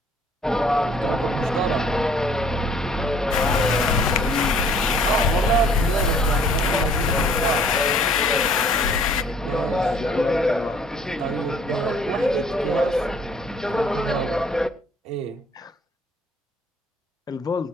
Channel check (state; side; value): normal; both; correlation 0.58